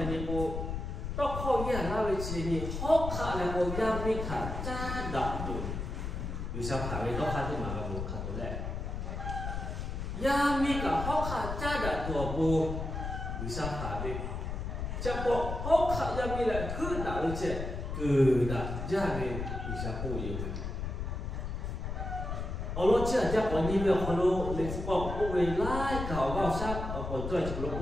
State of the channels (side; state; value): left; noise; rumble, 4 dB below the sound